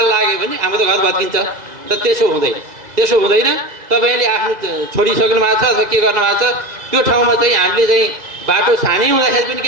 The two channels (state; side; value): late; left; 1.9 ms